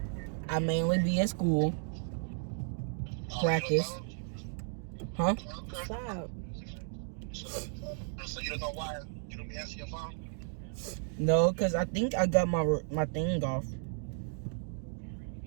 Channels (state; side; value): silent; left; 55 dB below the other